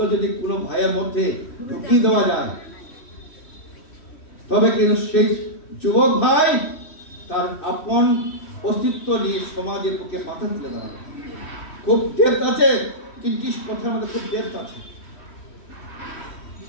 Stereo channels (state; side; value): late; right; 3.1 ms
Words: যদি কোনো ভাইয়ের মধ্যে ঢুকিয়ে দেওয়া যায়, তবে কিন্তু সেই যুবক ভাই তার আপন অস্তিত্ব নিয়ে সমাজের পক্ষে মাথা তুলে দাঁড়াবে। খুব ডেপথ আছে, 3টি কথার মধ্যে খুব ডেপথ আছে।